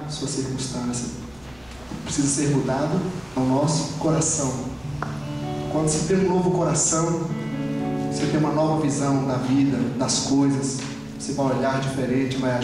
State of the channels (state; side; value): noise; right; rumble, 26 dB below the sound